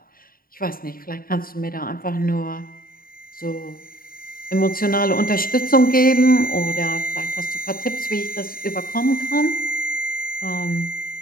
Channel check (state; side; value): late; right; 0.42 ms